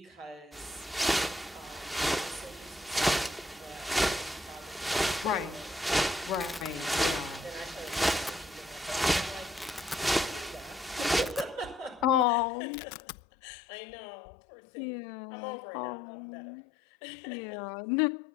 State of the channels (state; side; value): drops out; right; at 12.2 s